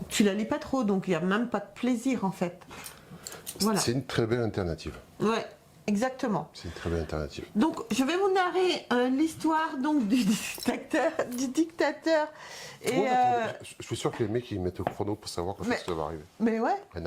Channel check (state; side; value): identical; both; correlation 1.00